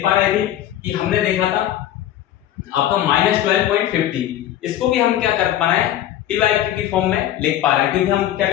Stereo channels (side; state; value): right; quieter; 12.3 dB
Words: पा रहे थे कि हमने देखा था आपका -12.50, इसको भी हम क्या कर पा रहे हैं, पीवाईक्यू की फॉर्म में लिख पा रहे हैं, क्योंकि हम क्या